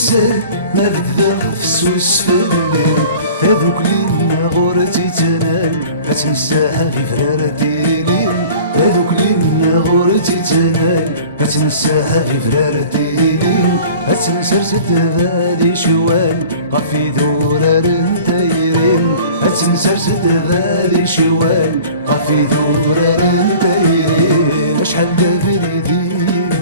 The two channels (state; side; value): inverted; both; correlation -0.44